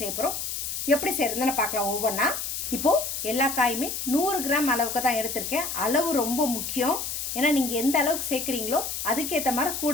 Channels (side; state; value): left; noise; hiss, 4 dB below the sound